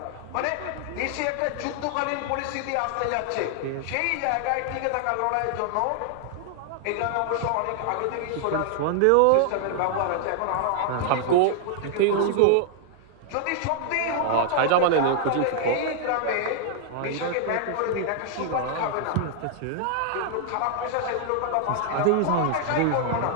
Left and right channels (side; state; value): both; different; correlation 0.00